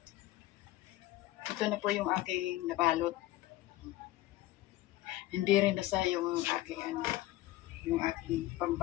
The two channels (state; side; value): quieter; right; 16.4 dB